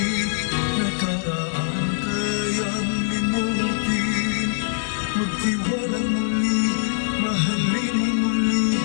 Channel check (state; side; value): silent; right; 63 dB below the other